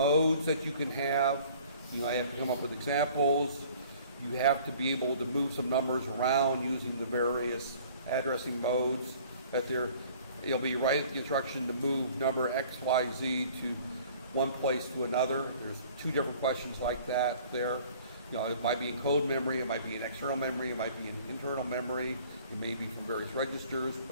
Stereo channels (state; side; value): inverted; both; correlation -0.51